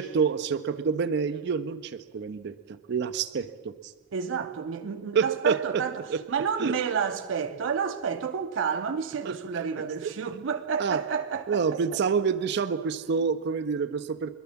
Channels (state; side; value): quieter; left; 5.7 dB